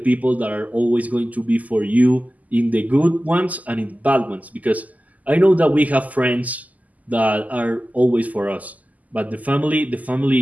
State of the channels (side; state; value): left; late; 0.077 ms